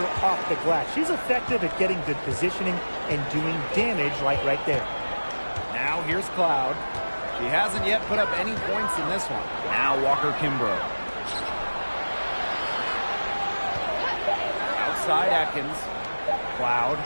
off the glass. She's effective at getting good positioning and doing damage like right there. Now here's Cloud. She hasn't yet put up any points in this one. Now Walker Kimbrough. Outside Atkins. Cloud.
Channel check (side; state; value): both; inverted; correlation -1.00